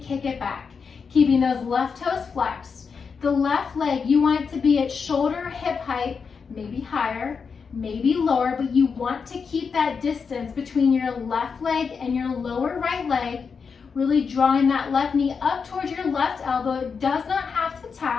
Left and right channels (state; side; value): quieter; right; 5.7 dB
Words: it back, keeping those left toes flexed. The left leg, you want it to be at shoulder hip height, maybe higher, maybe lower, but you want to keep that distance between your left leg and your lower right leg, really drawing that left knee up towards your left elbow. It does not have to